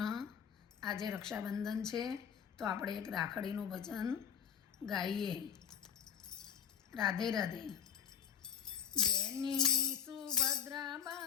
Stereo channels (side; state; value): right; quieter; 7.9 dB